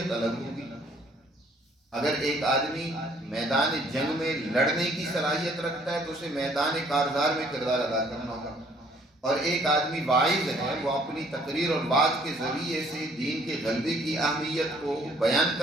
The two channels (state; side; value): normal; both; correlation 0.61